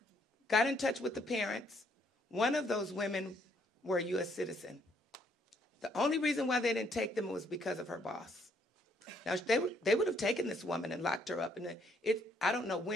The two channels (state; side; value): normal; both; correlation 0.69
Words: got in touch with the parents. One of those women were a U.S. citizen. The only reason why they didn't take them was because of her boss. Now, they would have taken this woman and locked her up, and I don't know